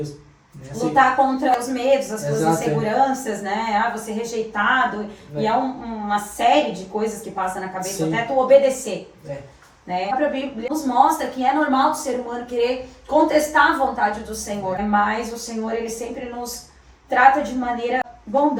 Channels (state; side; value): identical; both; correlation 1.00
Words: Lutar contra os medos, as suas inseguranças, né? Você rejeitado. E é uma série de coisas que passa na cabeça, até tu obedecer. Né? A própria Bíblia nos mostra que é normal do ser humano querer contestar a vontade do Senhor. Mas o Senhor, Ele sempre nos trata de maneira